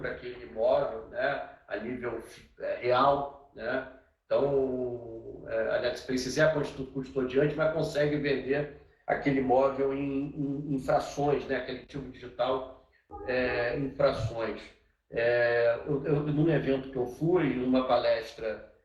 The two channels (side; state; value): both; identical; correlation 1.00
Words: aquele imóvel, né, a nível real, né? Então a NetSpace é a custodiante, mas consegue vender aquele imóvel em frações, né, aquele ativo digital em frações. Num evento que eu fui, numa palestra,